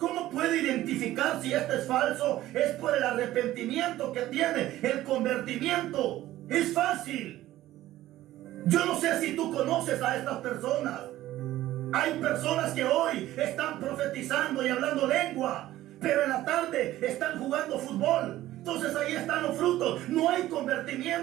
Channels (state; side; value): quieter; left; 14.9 dB